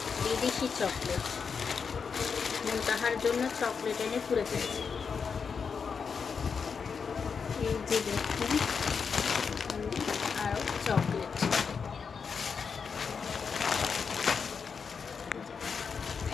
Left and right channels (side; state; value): right; quieter; 5.8 dB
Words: বিদেশি চকলেট। তাহার জন্য চকলেট এনে পুরে ফেলছে। এই যে দেখুন আরো চকলেট।